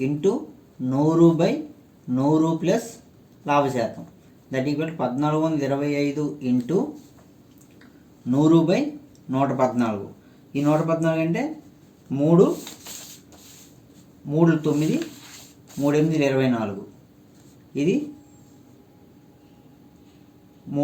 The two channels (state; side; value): identical; both; correlation 1.00